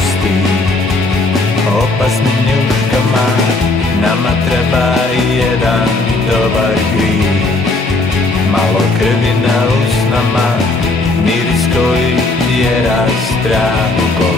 opasnim njuškama. Nama treba i jedan dobar grijeh, malo krvi na usnama, miris koji tjera strah u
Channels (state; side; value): quieter; right; 3.0 dB